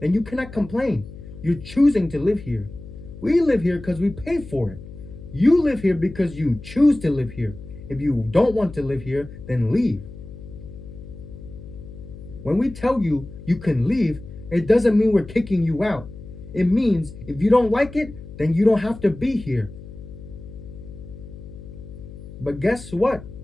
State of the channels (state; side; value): noise; left; hum, 15 dB below the sound